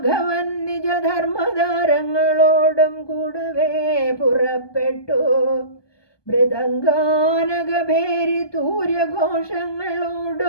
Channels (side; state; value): right; late; 1.2 ms